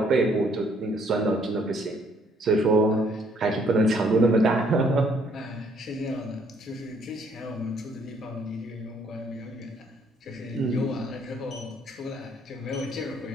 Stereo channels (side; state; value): both; normal; correlation 0.65